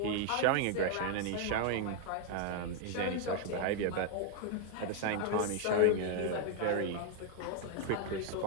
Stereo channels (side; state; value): both; different; correlation 0.00